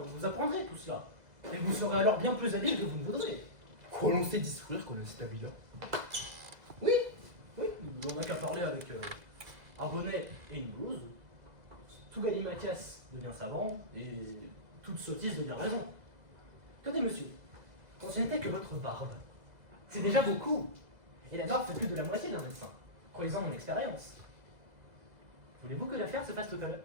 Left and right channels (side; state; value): left; late; 2.0 ms